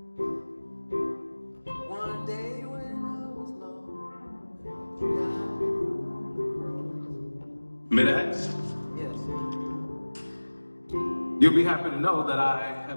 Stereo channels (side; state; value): both; inverted; correlation -1.00